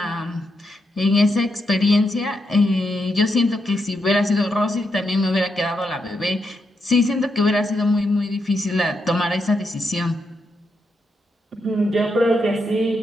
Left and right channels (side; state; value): both; normal; correlation 0.82